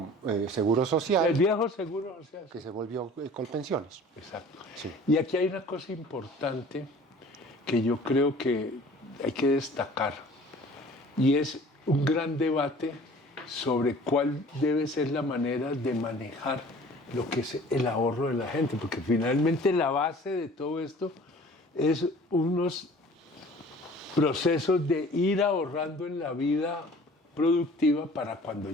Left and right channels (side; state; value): both; normal; correlation 0.48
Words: Seguro Social. El viejo Seguro Social. Que se volvió Colpensiones. Exacto. Sí. Y aquí hay una cosa importante que yo creo que hay que destacar, y es un gran debate sobre cuál debe ser la manera de manejar lo que es el ahorro de la gente, porque finalmente la base de todo esto es unos procesos de ir ahorrando en la vida productiva para cuando